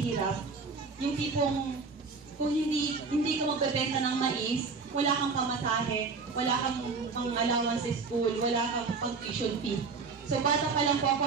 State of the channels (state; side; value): quieter; left; 4.6 dB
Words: Yung tipong, kung hindi ka magbebenta ng mais, wala kang pamasahe, wala kang pang-allowance sa school, wala kang pang-tuition fee. So bata pa lang po ako,